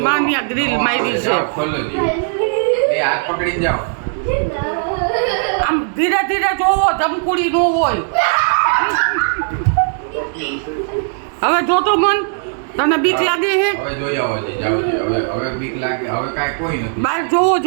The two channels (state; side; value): silent; left; digital silence